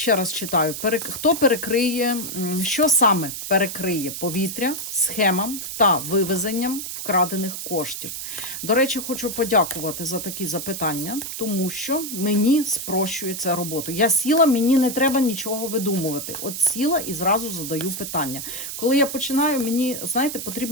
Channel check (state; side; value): noise; right; hiss, 7 dB below the sound